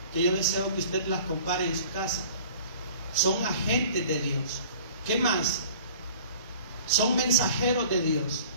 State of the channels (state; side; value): inverted; both; correlation -0.47